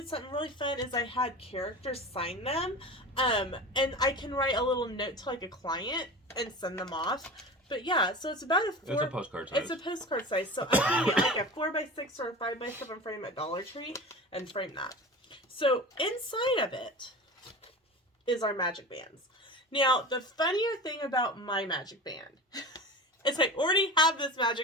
something really fun, is I had characters sign them. And I can write a little note to like a client and send them off. But yeah, so it's about it's a postcard size. It's a postcard size. So I can get like a 4x6 or a 5x7 frame at Dollar Tree and frame that. So inside of it is our magic bands. Now, the funnier thing about my magic band is I already have this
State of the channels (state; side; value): normal; both; correlation 0.32